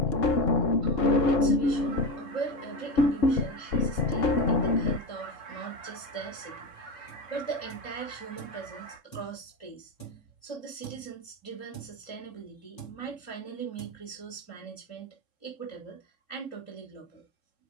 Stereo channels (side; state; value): right; late; 3.7 ms